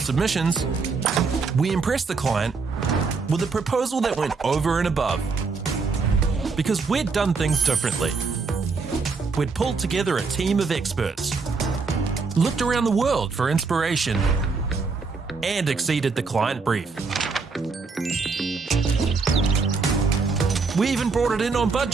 we impressed the client with a proposal that went over and above. Because we'd done things differently. We'd pulled together a team of experts, looked around the world for inspiration, and exceeded the client brief. We even brought it in on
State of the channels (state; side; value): quieter; left; 4.6 dB